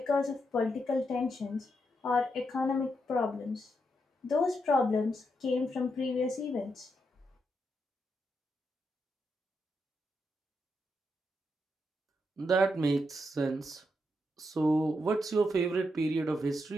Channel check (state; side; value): normal; both; correlation 0.82